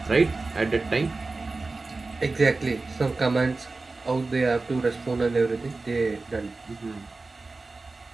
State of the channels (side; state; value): left; quieter; 3.6 dB